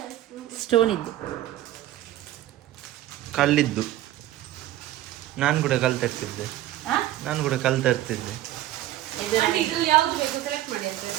ಸ್ಟೋನ್ ಇದ್ದು ಕಲ್ಲಿದ್ದು. ನಾನು ಕೂಡ ಕಲ್ ತರ್ತಿದ್ದೆ. ಇದ್ರಲ್ಲಿ ಯಾವ್ದು ಬೇಕು ಸೆಲೆಕ್ಟ್ ಮಾಡಿ ಅಂತ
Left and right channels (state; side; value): quieter; left; 14.0 dB